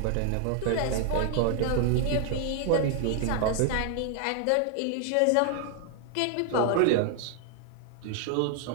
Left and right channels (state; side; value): different; both; correlation 0.00